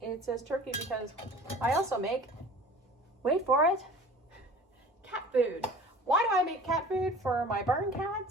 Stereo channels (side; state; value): both; normal; correlation 0.43